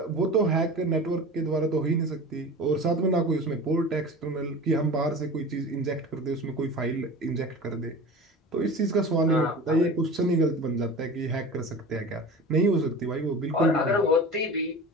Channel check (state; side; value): normal; both; correlation 0.35